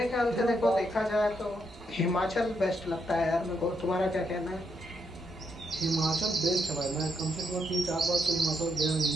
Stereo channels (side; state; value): both; normal; correlation 0.78